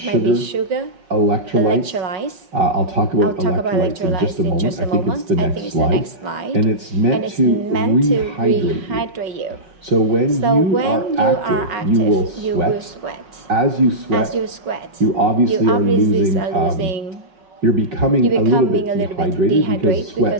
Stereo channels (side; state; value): left; late; 5.5 ms